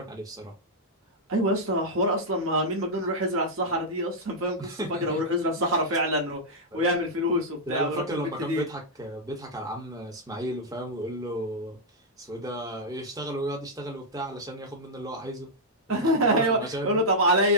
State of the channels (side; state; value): both; normal; correlation -0.06